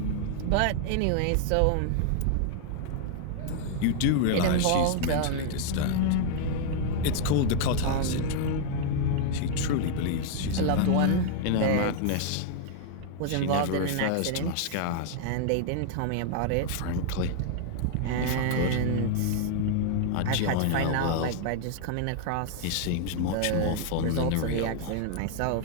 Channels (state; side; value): different; both; correlation 0.00